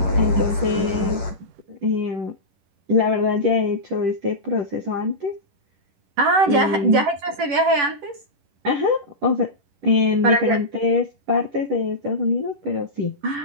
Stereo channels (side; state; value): left; late; 11 ms